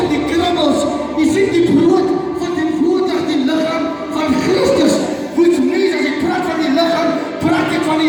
die krummels. Jy sien die brood van die woordig die liggaam van Christus. Which means, as ek praat van die liggaam, praat ek van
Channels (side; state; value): both; identical; correlation 1.00